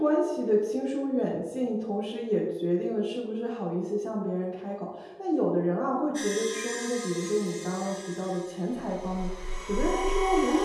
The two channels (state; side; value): identical; both; correlation 1.00